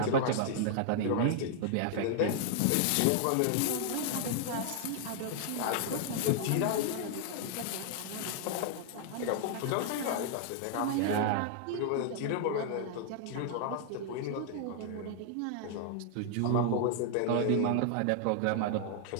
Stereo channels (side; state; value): both; different; correlation 0.00